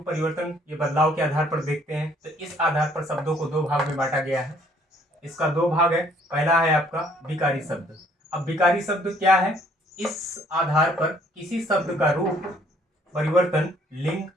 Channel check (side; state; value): both; normal; correlation 0.62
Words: परिवर्तन ये बदलाव के आधार पर देखते हैं तो इस आधार पर शब्दों को दो भाग में बांटा गया है। इसका दो भाग है। पहला है आपका विकारी शब्द। अब विकारी शब्द क्या है? इस आधार पर किसी शब्द का रूप परिवर्तन लिंग,